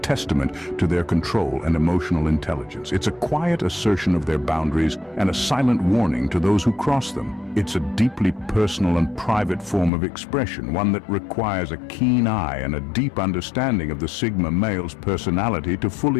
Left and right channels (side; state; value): right; drops out; at 9.9 s